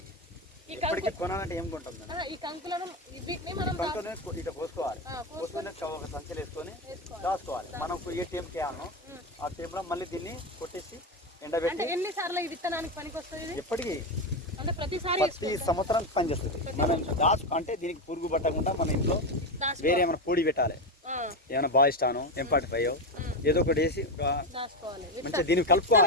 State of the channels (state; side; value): normal; both; correlation 0.13